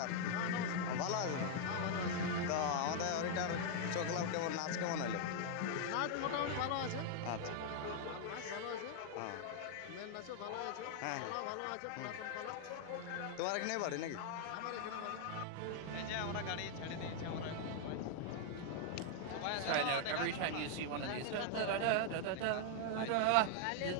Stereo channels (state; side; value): different; both; correlation 0.00